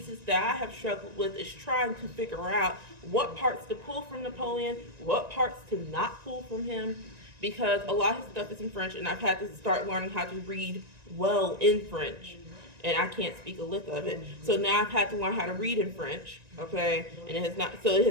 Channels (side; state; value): left; late; 1.9 ms